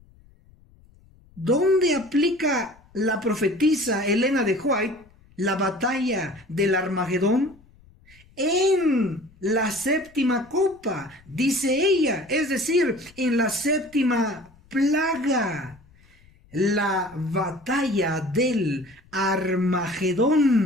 ¿Dónde aplica la profetisa Elena de White la batalla del Armagedón? En la séptima copa, dice ella, es decir, en la séptima plaga, la batalla del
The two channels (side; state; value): left; noise; rumble, 28 dB below the sound